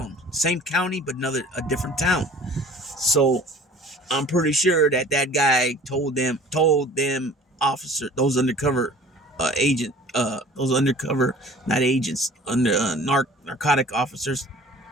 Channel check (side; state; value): both; normal; correlation 0.48